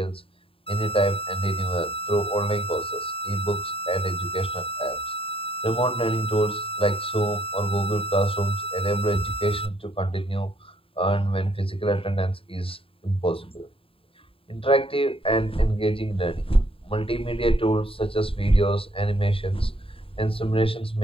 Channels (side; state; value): right; late; 0.27 ms